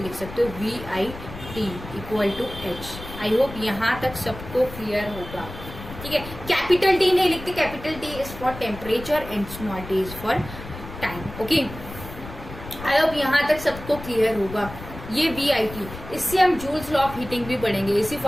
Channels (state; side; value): noise; left; rumble, 13 dB below the sound